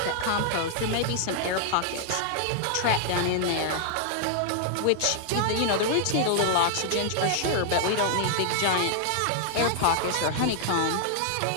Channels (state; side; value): different; both; correlation -0.01